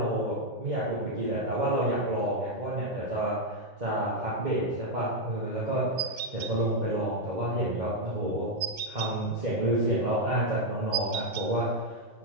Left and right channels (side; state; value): left; late; 2.1 ms